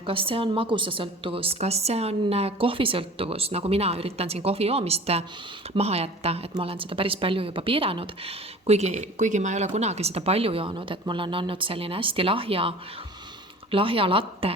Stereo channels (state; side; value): normal; both; correlation 0.42